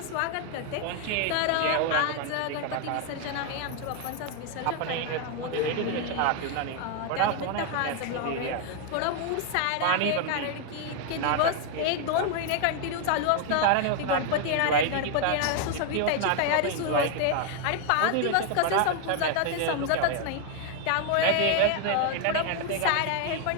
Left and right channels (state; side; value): different; both; correlation 0.00